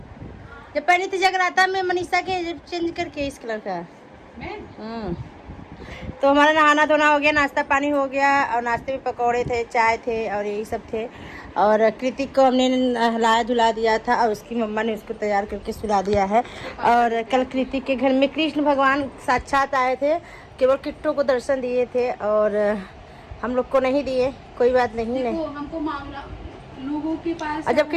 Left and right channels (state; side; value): identical; both; correlation 1.00